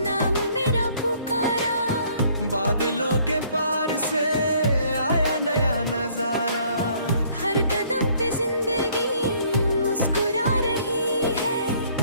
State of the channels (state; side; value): inverted; both; correlation -0.61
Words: मेरा पुकारा, बादलों के पार से आया नया नजारा। हर कदम पे जिंदगी मुस्कुरा रही है।